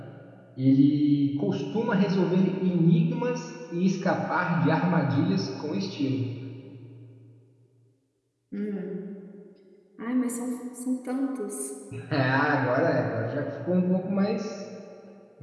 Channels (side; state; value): both; identical; correlation 1.00